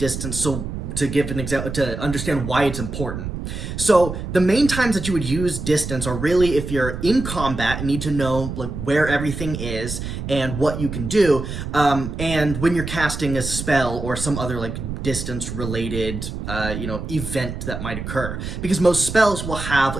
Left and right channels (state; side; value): noise; right; rumble, 6 dB below the sound